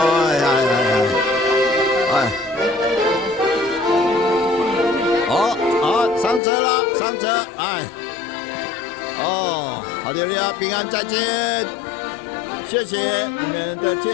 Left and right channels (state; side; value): drops out; right; at 6.4 s